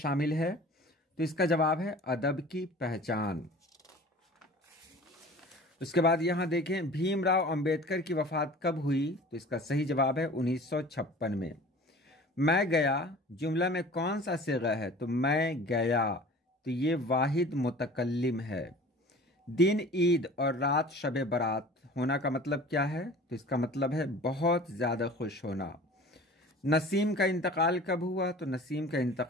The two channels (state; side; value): normal; both; correlation 0.43